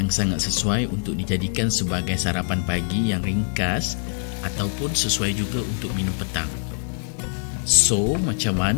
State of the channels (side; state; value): right; silent; 57 dB below the other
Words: sangat sesuai untuk dijadikan sebagai sarapan pagi yang ringkas ataupun sesuai juga untuk minum petang. So, macam